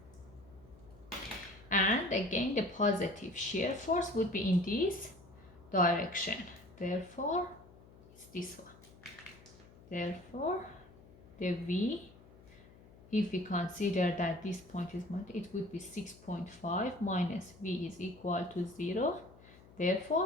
And again, the positive shear force would be in this direction. Therefore, it's this one. Therefore, the V, if we consider that this point is, it would be 6.5 minus V is equal to 0.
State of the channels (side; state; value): left; noise; hum, 22 dB below the sound